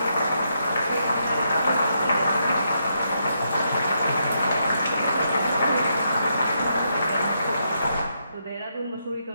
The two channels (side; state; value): both; inverted; correlation -0.79